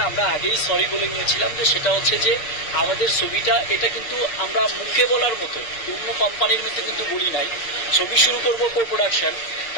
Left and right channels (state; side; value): late; right; 6.5 ms